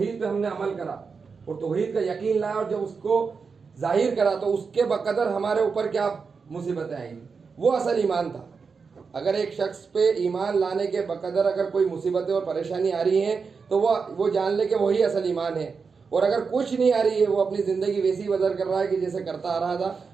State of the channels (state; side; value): quieter; left; 5.2 dB